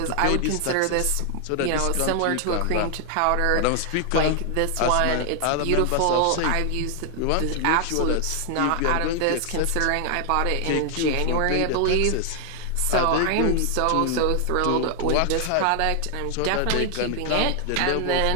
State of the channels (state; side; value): different; both; correlation 0.00